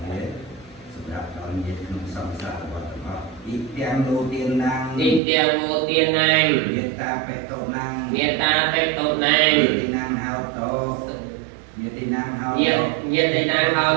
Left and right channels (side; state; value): left; drops out; at 5.2 s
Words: thế sắp đặt đón nhiệt không song xa và tập ít tiền đầu tiên năng ទីទាំងមួយទៀតណាង nhiệt ta phải tổ năng មេត្តាបេតោណាង nhiệt tí năng hao tổ nhiệt tí năng hao ញា tổ ញាតិណាងហោ